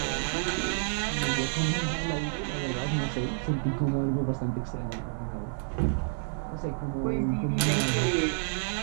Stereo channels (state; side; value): silent; left; digital silence